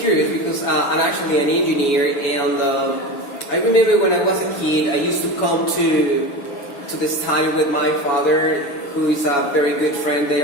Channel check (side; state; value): right; late; 7.1 ms